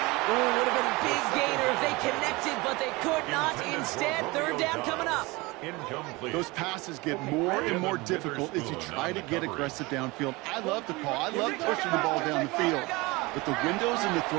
Oh, would have been a big gainer if they connected, but they could not. Instead, 3rd down coming up. Incomplete. Those passes get more and more difficult as you try to get aggressive downfield. I love the call. I love pushing the ball down the field. But the windows in the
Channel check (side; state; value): left; quieter; 23.5 dB